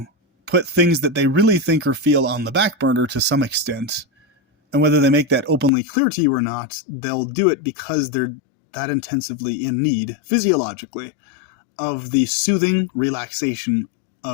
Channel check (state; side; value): drops out; right; at 5.7 s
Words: put things that they really think or feel on the back burner to some extent. And whether they make that openly clear to you or not, they'll do it because they're that intensively in need, physiologically, of the soothing relaxation